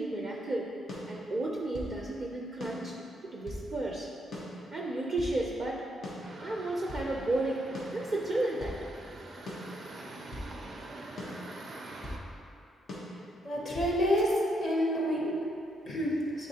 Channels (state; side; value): normal; both; correlation 0.76